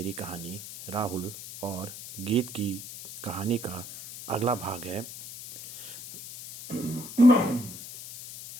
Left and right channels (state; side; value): noise; left; hiss, 12 dB below the sound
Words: कहानी राहुल और गीत की कहानी का अगला भाग है।